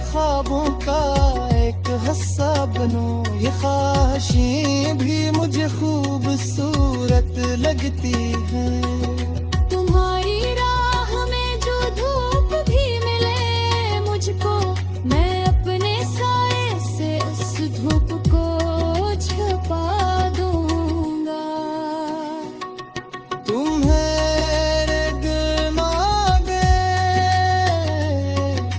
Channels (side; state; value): both; identical; correlation 1.00